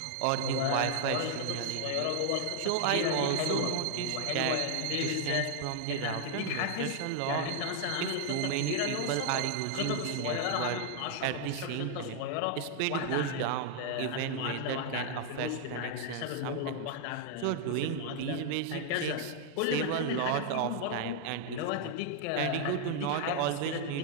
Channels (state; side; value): different; both; correlation 0.00